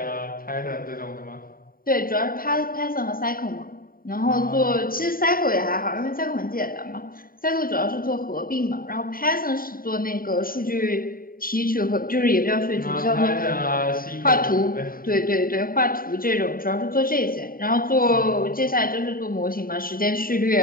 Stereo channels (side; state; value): right; late; 0.41 ms